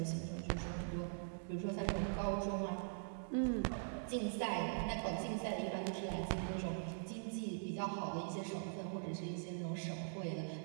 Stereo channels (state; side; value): silent; left; digital silence